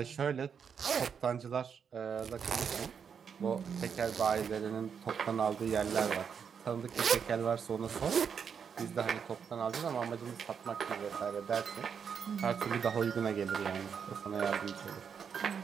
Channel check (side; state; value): left; quieter; 6.9 dB